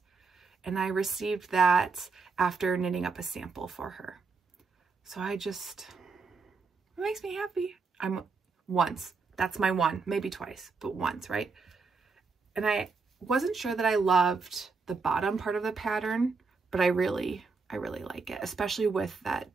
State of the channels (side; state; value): left; quieter; 4.5 dB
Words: And I received that after knitting up a sample for her. So it makes me happy. Once, that's my one, maybe twice, but once, right? And I wasn't sure that I loved the bottom part of the pattern, but I really like it, especially with that